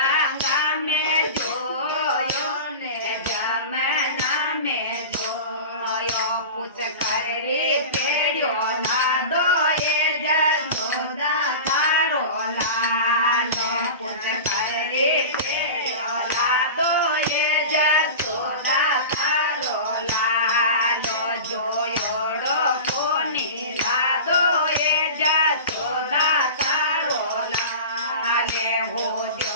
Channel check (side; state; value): both; inverted; correlation -0.31